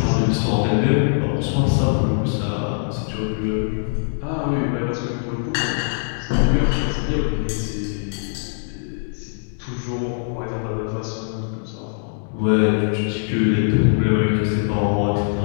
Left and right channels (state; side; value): silent; right; digital silence